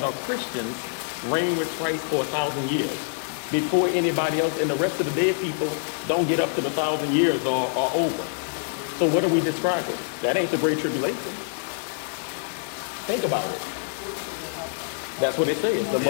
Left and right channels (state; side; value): silent; right; 58 dB below the other